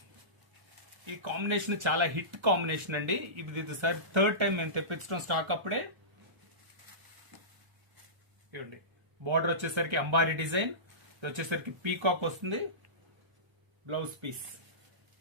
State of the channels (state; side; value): late; left; 1.3 ms